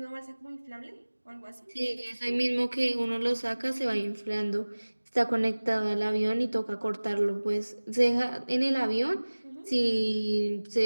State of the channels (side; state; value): both; inverted; correlation -1.00